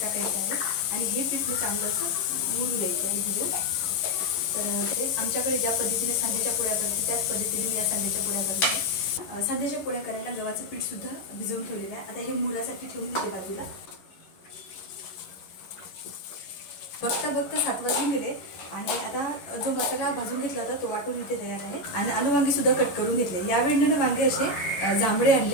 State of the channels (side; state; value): right; late; 11 ms